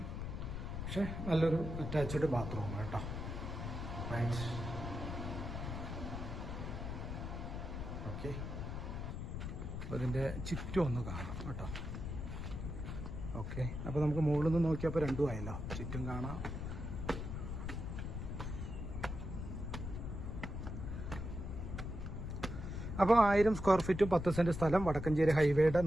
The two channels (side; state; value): left; noise; rumble, 5 dB below the sound